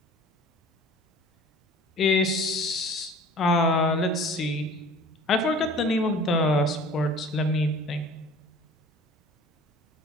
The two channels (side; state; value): both; normal; correlation 0.45